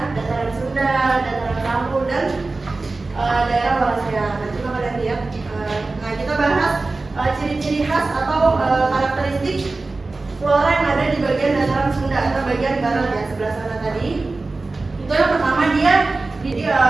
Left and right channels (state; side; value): quieter; left; 3.5 dB